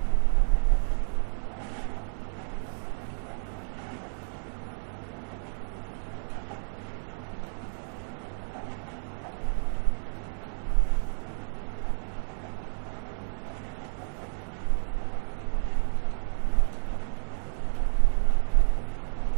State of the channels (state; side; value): silent; left; digital silence